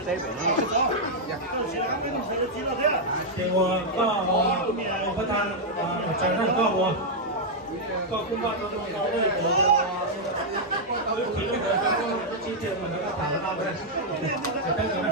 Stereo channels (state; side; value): normal; both; correlation -0.03